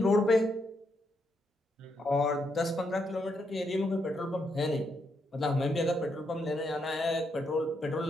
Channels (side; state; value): both; normal; correlation 0.78